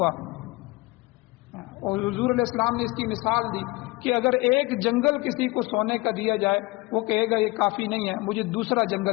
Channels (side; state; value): right; quieter; 22.6 dB